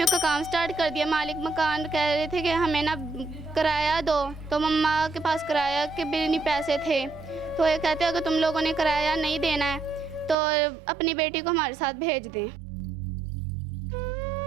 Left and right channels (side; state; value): left; drops out; at 10.4 s